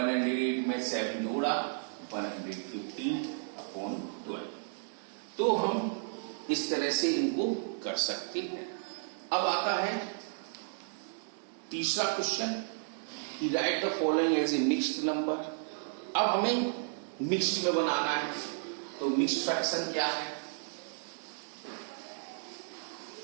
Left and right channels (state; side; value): silent; left; digital silence